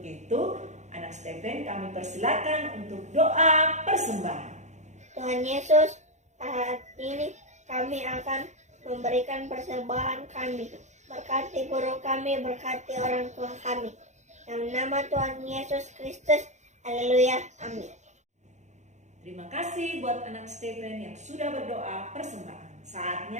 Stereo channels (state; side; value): late; left; 0.34 ms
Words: itu, anak Stephen kami persilakan untuk doa persembahan. Tuhan Yesus, saat ini kami akan memberikan persembahan kami. Berkati guru kami, berkati orang tua kami. Dalam nama Tuhan Yesus Kristus, haleluya, amin. Terima kasih buat anak Stephen yang sudah berdoa persembahan.